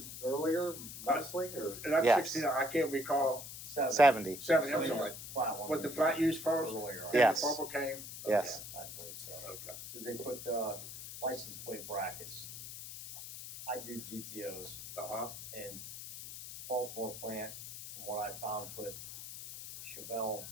earlier, mostly, or? And that's Yes. 69. I can't recall. 70? 70, I'm So sorry. the flat one Was the was flat used first? earlier, Then Yes. the bubble came? Yes. I believe so. Okay. So they put the license plate brackets. I do GTOs, Uh-huh. and Baltimore plant, from what I found, put Chevelle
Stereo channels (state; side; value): noise; left; hiss, 10 dB below the sound